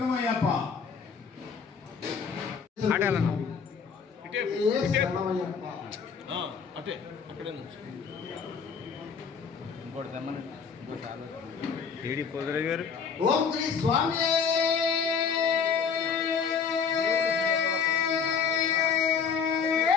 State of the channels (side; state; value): right; quieter; 6.3 dB